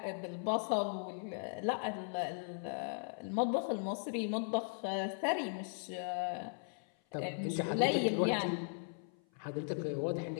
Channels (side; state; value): right; silent; 53 dB below the other